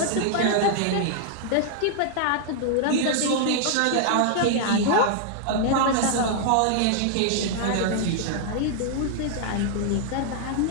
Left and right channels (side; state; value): both; different; correlation 0.00